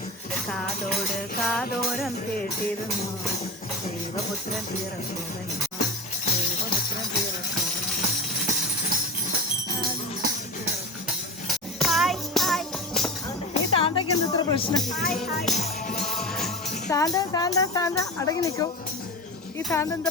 കാതോട് കാതോരം കേട്ടിരുന്നു ദൈവപുത്രൻ പിറക്കുവൻ. ദൈവപുത്രൻ പിറക്കുവൻ. ഈ താന്തയ്ക്ക് എന്താ ഇത്ര പ്രശ്നം? താന്ത താന്ത താന്ത അടങ്ങി നിൽക്കൂ. ഈ താന്ത എന്താ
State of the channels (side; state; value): both; normal; correlation 0.30